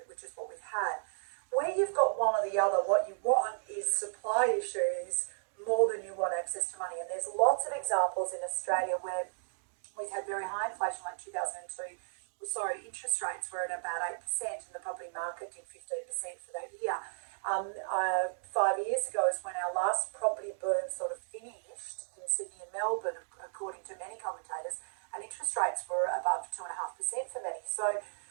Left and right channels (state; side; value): silent; left; digital silence